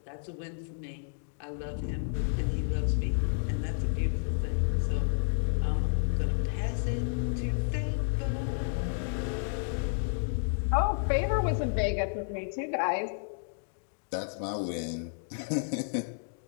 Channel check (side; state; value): right; silent; digital silence